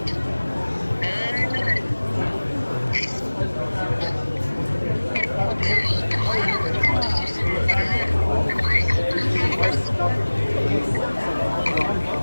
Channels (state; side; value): inverted; both; correlation -1.00